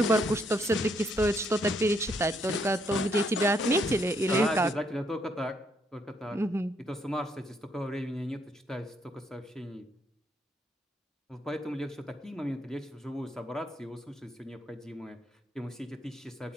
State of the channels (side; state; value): both; normal; correlation 0.72